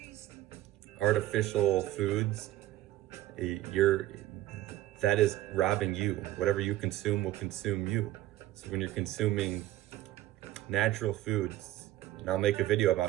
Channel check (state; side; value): quieter; left; 14.9 dB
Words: artificial foods, that is robbing you. Whatever you consume will consume you. So when you're consuming natural foods, and I'll make a video